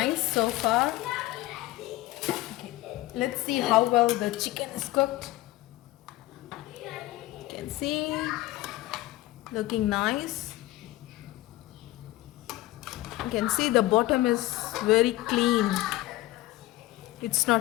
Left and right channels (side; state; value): right; quieter; 17.3 dB